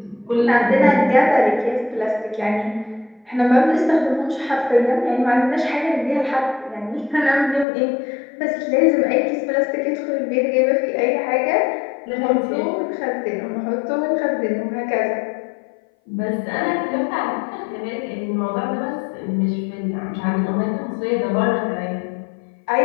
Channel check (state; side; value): drops out; right; at 7.7 s